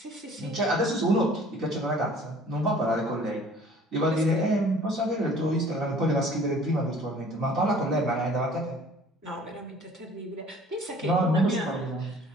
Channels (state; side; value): normal; both; correlation 0.51